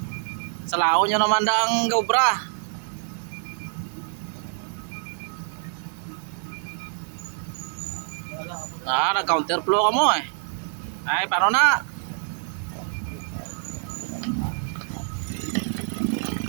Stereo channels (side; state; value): left; silent; 61 dB below the other